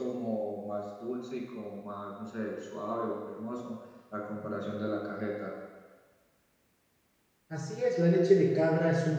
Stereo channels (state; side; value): identical; both; correlation 1.00